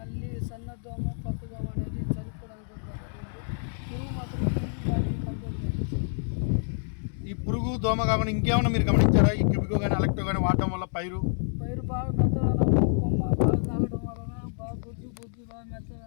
సన్నదోమ పచ్చదోమ అనేది చనిపోవడానికి పురుగు మాత్రం బాగా కంట్రోల్ అయింది. ఈ పురుగు దోమ కాకుండా ఇంకేమైనా మీరు గమనించారా? ఈ క్యూబికో కానీ అలెక్టో కానీ వాడటం వల్ల పైరు బాగా మెత్తదనము, కొమ్మ బాగా తాగడం వలన బాగా గుజ్జు బాగా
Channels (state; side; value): silent; right; digital silence